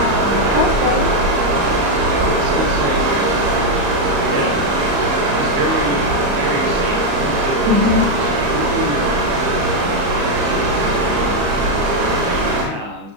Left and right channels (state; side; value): late; left; 35 ms